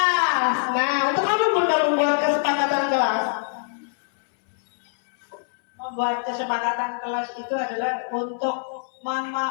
Nah, untuk apa Bunda membuat kesepakatan kelas? Membuat kesepakatan kelas itu adalah untuk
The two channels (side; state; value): right; silent; 63 dB below the other